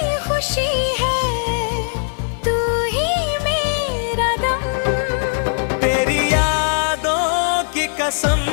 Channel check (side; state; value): right; silent; 60 dB below the other